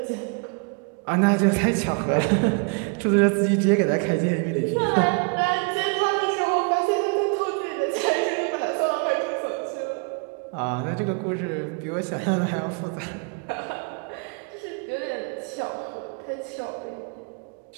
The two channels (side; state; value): left; quieter; 35.4 dB